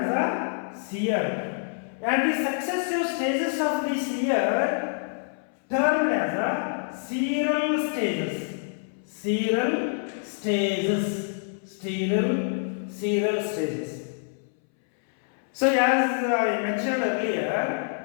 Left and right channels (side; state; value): right; silent; 61 dB below the other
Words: a seer. And the successive stages of this year termed as a seral stages. So as I mentioned